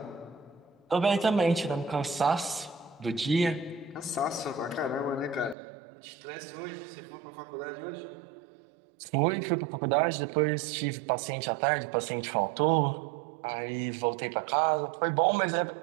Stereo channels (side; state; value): left; drops out; at 5.6 s